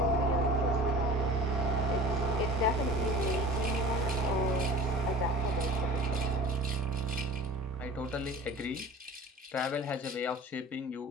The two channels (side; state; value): both; normal; correlation 0.40